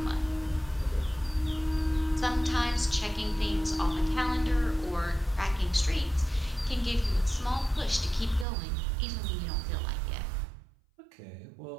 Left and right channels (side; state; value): left; drops out; at 8.5 s